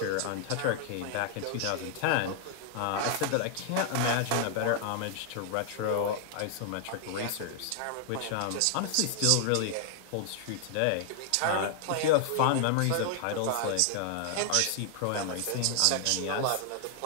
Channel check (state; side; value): different; both; correlation 0.00